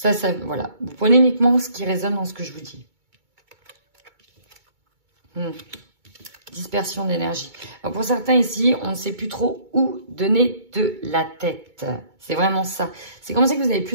voilà, vous prenez uniquement ce qui résonne dans ce que je vous dis. Dispersion d'énergie. Pour certains ici, on ne sait plus trop où donner de la tête. C'est vraiment ça. C'est comme si vous avez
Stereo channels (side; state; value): left; late; 2.2 ms